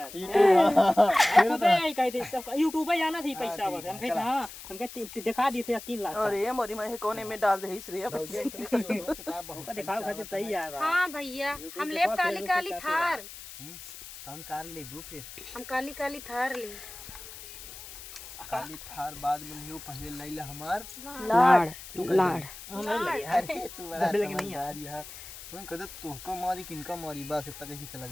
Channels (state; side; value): noise; left; hiss, 14 dB below the sound